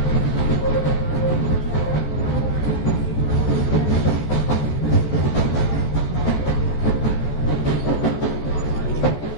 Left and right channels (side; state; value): right; late; 14 ms